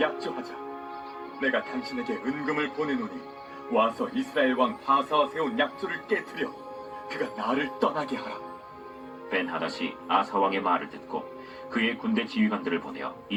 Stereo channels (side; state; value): both; identical; correlation 1.00